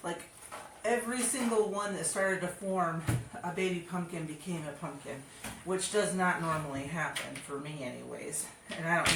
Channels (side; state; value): both; identical; correlation 1.00